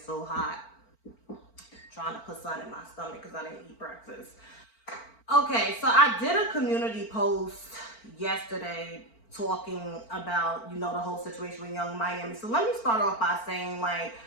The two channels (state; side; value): late; right; 4.4 ms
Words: hot. I'm trying to put sun in my stomach because I didn't eat breakfast. Okay, so I did a community post yesterday talking about, the whole situation with Young Miami. So let me start off by saying, I